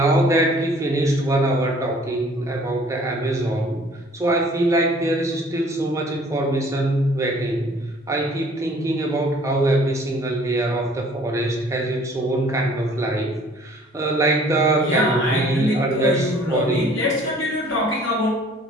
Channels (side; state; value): both; normal; correlation 0.54